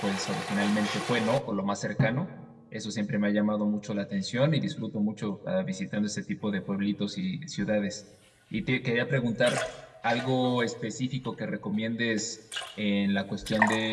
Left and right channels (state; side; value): identical; both; correlation 1.00